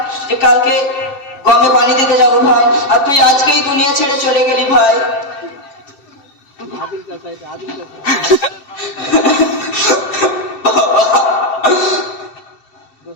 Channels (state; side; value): late; right; 7.6 ms